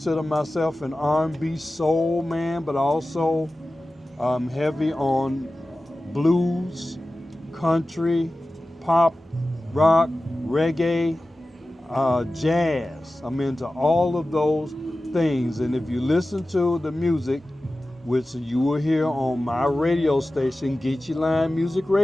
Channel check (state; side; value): normal; both; correlation 0.95